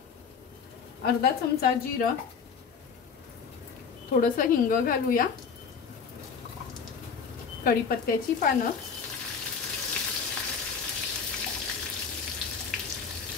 अर्धा चमचा जिरं, थोडंसं हिंग घालूया, कढीपत्त्याची पानं,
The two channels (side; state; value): right; quieter; 6.1 dB